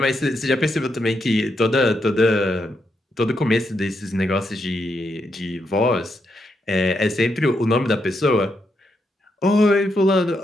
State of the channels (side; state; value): both; normal; correlation 0.81